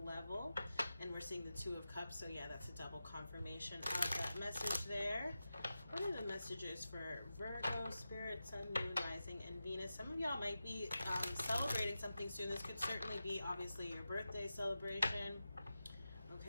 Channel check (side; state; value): both; inverted; correlation -0.92